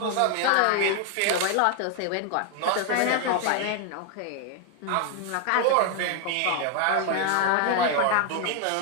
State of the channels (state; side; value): different; both; correlation 0.01